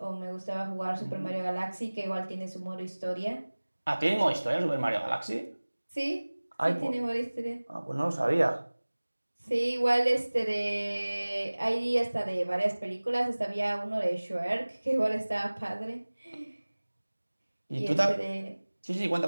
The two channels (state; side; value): inverted; both; correlation -1.00